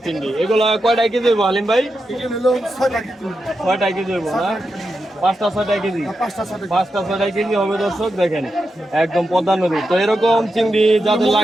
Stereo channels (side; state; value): both; normal; correlation 0.87